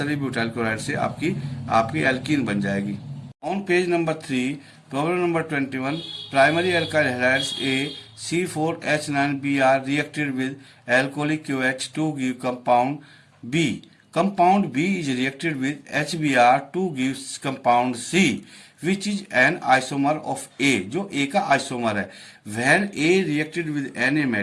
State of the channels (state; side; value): identical; both; correlation 1.00